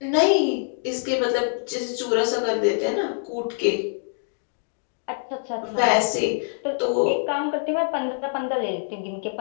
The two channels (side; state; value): right; silent; digital silence